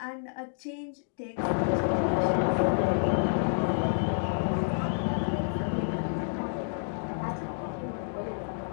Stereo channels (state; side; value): silent; right; digital silence